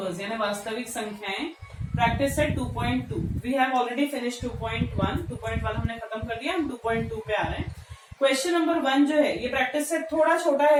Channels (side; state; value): both; identical; correlation 1.00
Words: यानी वास्तविक संख्याएं practice set 2.2. We have already finish 2.1 हमने खत्म कर दिया, हम 2.2 पे आ रहे हैं. क्वेश्चन नंबर 1 जो है ये प्रैक्टिस सेट थोड़ा छोटा